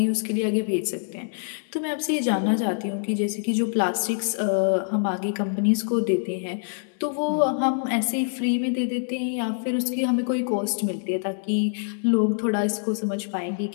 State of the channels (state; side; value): silent; right; 62 dB below the other